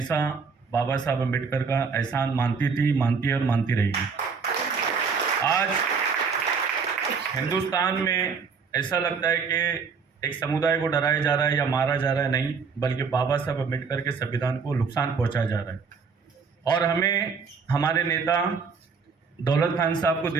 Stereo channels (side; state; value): left; quieter; 5.4 dB